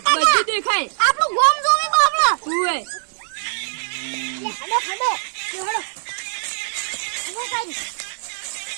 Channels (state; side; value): silent; left; 64 dB below the other